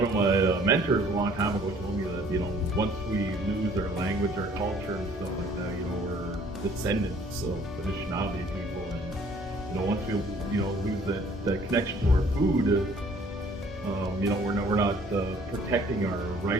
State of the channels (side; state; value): both; normal; correlation 0.57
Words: of my mentors a long time ago told me that, you know, once we lose our language, our culture, and stuff like that, you know, we're descendants of Anishinaabe people, and, you know, once we, you know, lose that connection to our food, you know, we're not protecting our